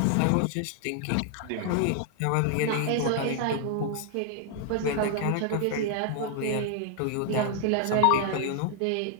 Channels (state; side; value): different; both; correlation 0.00